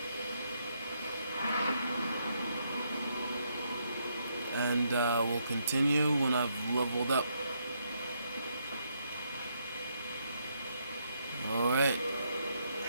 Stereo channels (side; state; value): both; inverted; correlation -0.76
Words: And we'll continue when I've leveled up. Alright.